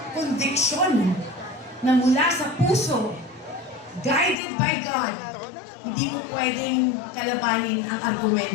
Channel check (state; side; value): drops out; right; at 4.4 s